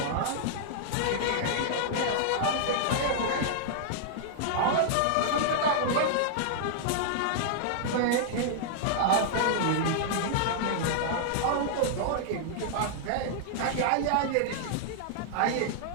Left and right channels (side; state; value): both; different; correlation -0.01